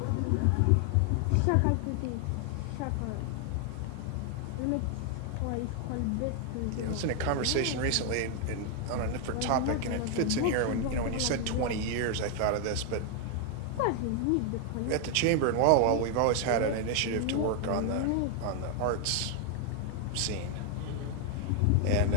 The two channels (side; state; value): both; different; correlation 0.00